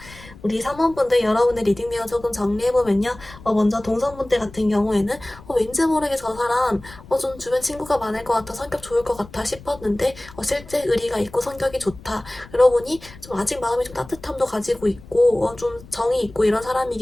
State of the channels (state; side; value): noise; left; rumble, 19 dB below the sound